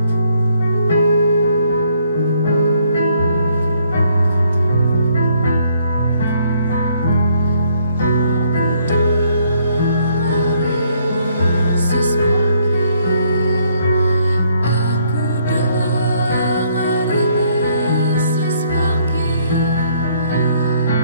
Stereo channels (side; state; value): both; inverted; correlation -0.68